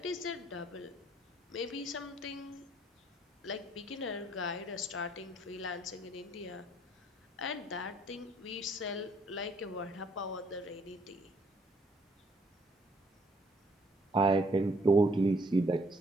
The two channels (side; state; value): both; normal; correlation 0.65